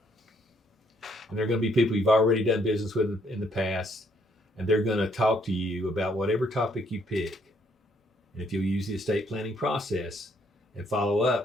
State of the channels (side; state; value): both; normal; correlation 0.69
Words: And they're going to be people you've already done business with in the past, and they're going to talk to you about whatever topic you pick. And if you'll use the estate planning process and follow